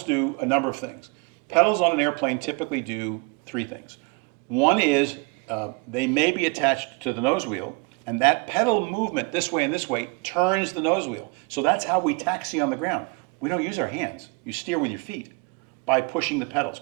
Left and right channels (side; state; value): left; quieter; 29.8 dB